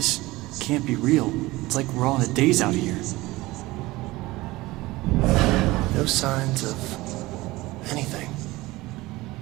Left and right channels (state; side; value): quieter; left; 19.7 dB